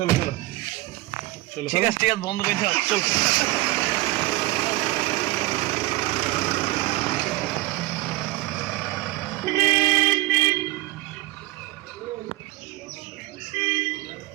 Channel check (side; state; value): left; quieter; 18.9 dB